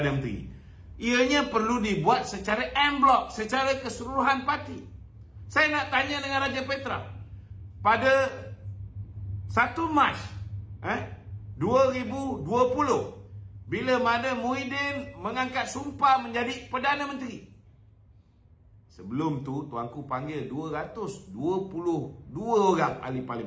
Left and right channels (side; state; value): both; identical; correlation 1.00